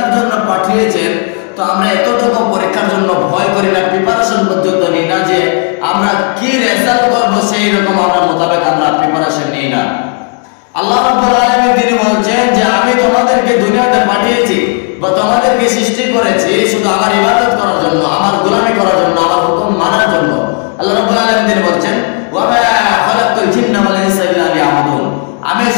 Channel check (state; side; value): quieter; right; 38.2 dB